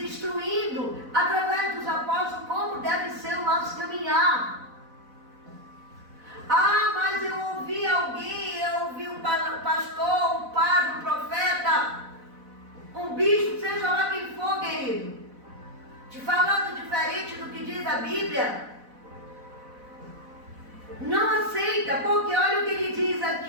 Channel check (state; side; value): late; left; 4.0 ms